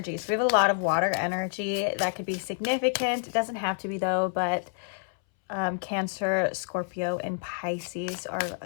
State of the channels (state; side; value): silent; right; 59 dB below the other